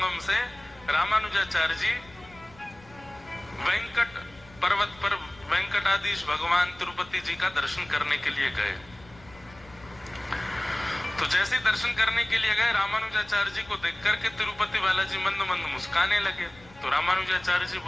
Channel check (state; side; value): noise; left; rumble, 24 dB below the sound